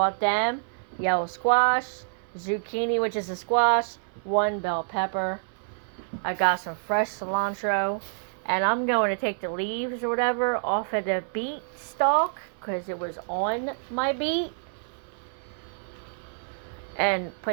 them. Yellow squash, zucchini, which is a squash, 1 bell pepper. I got some fresh cilantro. And I'm going to take the leaves or whatever off of the beet stalk because it was on my beet. And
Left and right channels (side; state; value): left; silent; 60 dB below the other